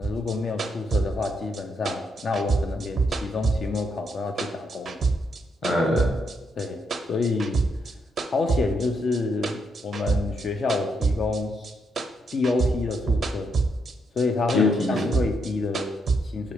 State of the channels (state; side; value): normal; both; correlation 0.78